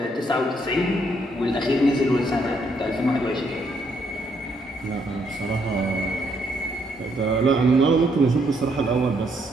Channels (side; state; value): both; normal; correlation 0.73